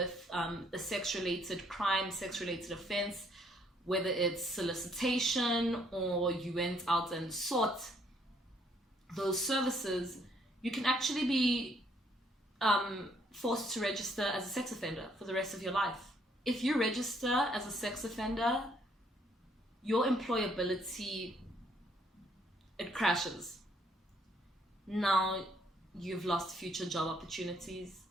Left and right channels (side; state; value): both; normal; correlation 0.67